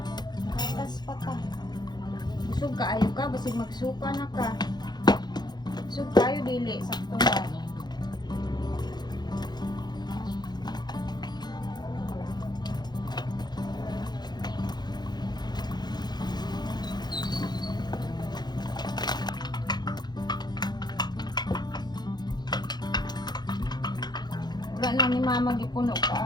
Gatas pa ka. Busog ka, ayaw ka. Basig magsuka na ka. Busog kayo, dili. Sakto ba? Wala na ni mama gipuno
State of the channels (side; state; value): right; late; 0.20 ms